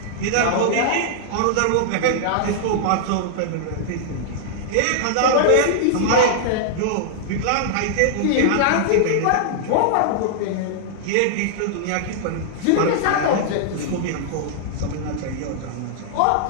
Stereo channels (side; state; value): both; different; correlation -0.01